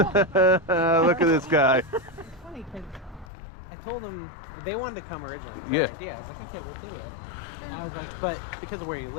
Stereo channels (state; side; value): drops out; right; at 3.2 s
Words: at this guy. It's funny because I told them they wanted to come originally. Yeah. I was like, okay, we'll do it. And I was like, but because of where you